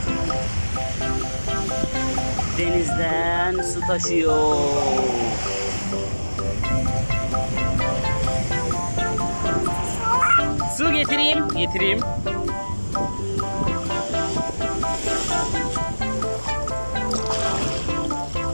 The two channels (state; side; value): inverted; both; correlation -1.00